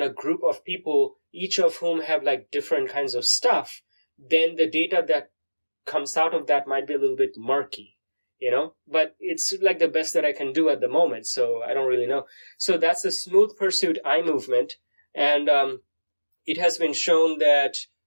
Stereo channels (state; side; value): inverted; both; correlation -1.00